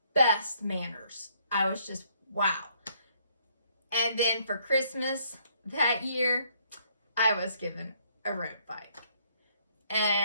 best manners. I was just, wow. And then for Christmas that year, I was given a road bike.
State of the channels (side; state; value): both; inverted; correlation -0.67